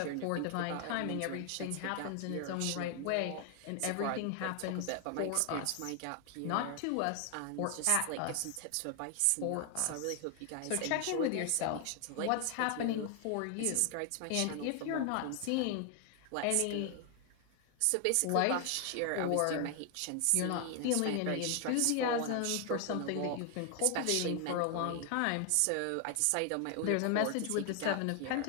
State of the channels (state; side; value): different; both; correlation 0.00